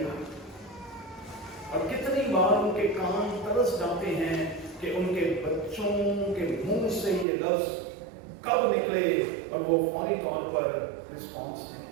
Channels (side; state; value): left; drops out; at 7.2 s